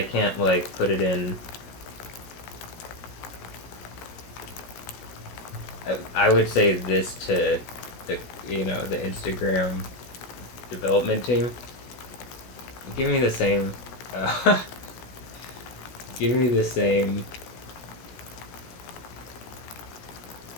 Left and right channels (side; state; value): right; late; 16 ms